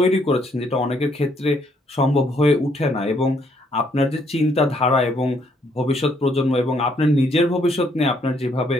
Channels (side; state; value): both; normal; correlation 0.70